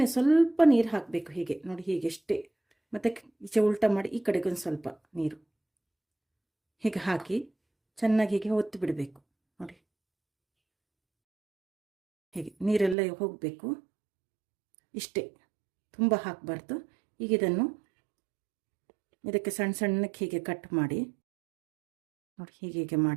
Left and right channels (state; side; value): drops out; left; at 13.0 s